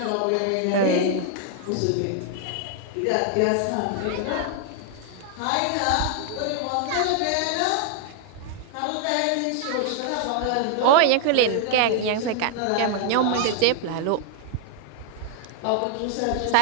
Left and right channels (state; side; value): different; both; correlation 0.00